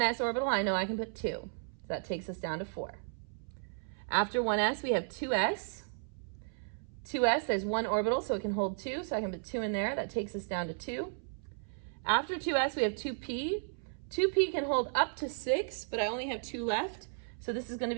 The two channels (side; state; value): left; silent; 55 dB below the other